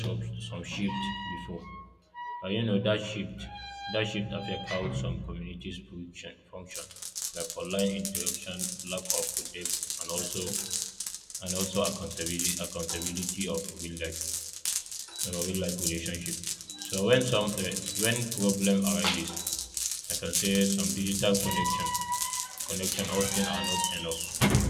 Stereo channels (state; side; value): identical; both; correlation 1.00